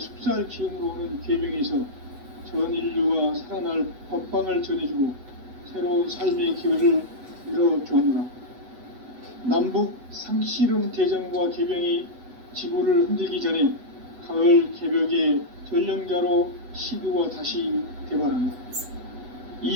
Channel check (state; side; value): late; left; 8.1 ms